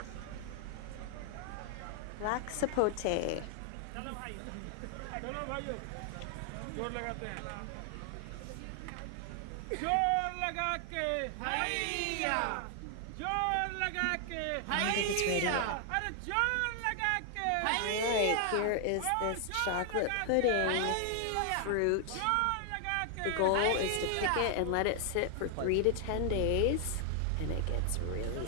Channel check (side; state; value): both; different; correlation 0.00